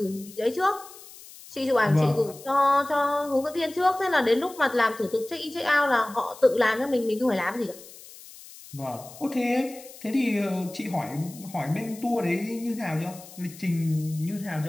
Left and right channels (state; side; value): noise; left; hiss, 18 dB below the sound